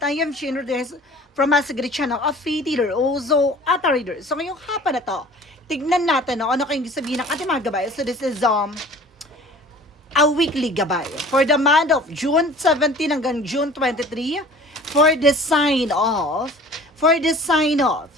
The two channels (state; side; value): normal; both; correlation 0.46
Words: I am Shane Rodriguez from Masagri Channel, a faith healer, also at a reader. So ngayong hapon na to, tignan natin ano kayong sabihin ng ating mga gabay. So this is a weekly gabay for the month of June 17 hanggang June 23 for the sign of